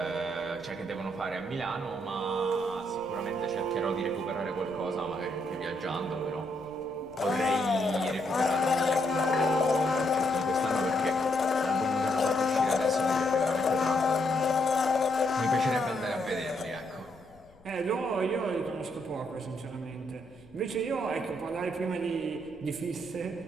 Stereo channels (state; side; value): noise; left; rumble, 28 dB below the sound